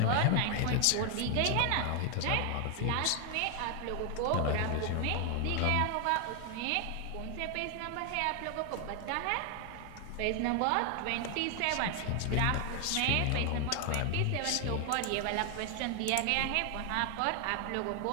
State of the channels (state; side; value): different; both; correlation 0.00